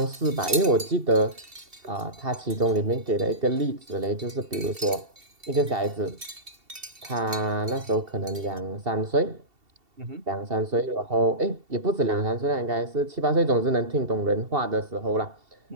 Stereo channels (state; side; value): late; left; 2.7 ms